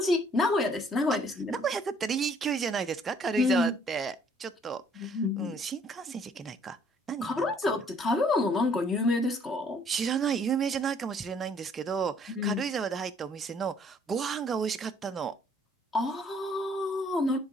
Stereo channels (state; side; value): normal; both; correlation 0.62